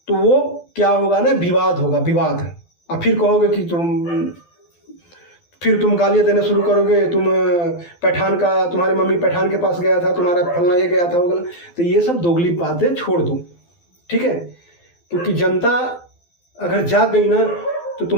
तो वो क्या होगा ना, विवाद होगा, विवाद। और फिर कहोगे कि फिर तुम गालियाँ देना शुरू करोगे, तुम पठान का, तुम्हारी मम्मी पठान के पास गया था, तुम्हारा फलना ये गया था, वो गया। तो ये सब दोगली बातें छोड़ दो, ठीक है। क्योंकि जनता अगर जाग गई ना तो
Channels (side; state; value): right; late; 12 ms